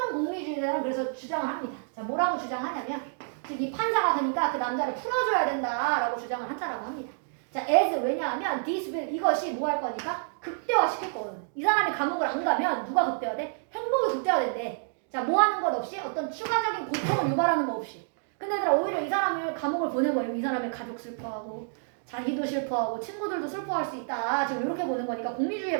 공리주의자는 그래서 주장을 합니다. 자 뭐라고 주장하냐면 즉 이 판사가 가니까 그 남자를 풀어줘야 된다라고 주장을 한다라고 합니다. 자 as 왜냐하면 this will 이것이 뭐 할 거니까 극대화시킬 거거든. 이 사람이 감옥을 안 가면 누가 극대화돼? 행복이 극대화된대. 자 뭐 하는 것 없이 어떤 추가적인 고통을 유발하는 거 없이. 근데 얘들아 오히려 이 사람을 감옥을 보내버리면 이 사람의 가족 슬퍼하고 자기도 슬퍼하고 친구들도 슬퍼할 수 있다. 지금 이렇게 보는 거니까 공리주의에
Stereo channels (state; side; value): silent; left; digital silence